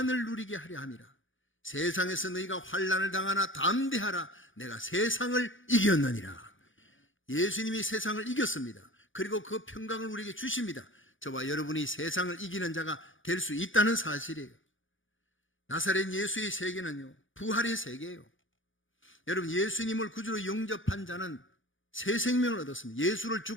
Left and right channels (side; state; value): right; late; 0.57 ms